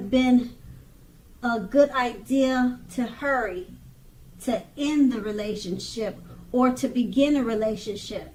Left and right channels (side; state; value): both; identical; correlation 1.00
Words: been a good idea to hurry to end the relationship or to begin a relationship.